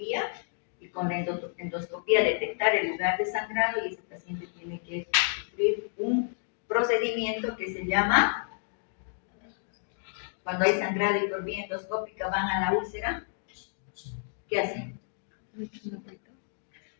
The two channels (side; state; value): right; silent; digital silence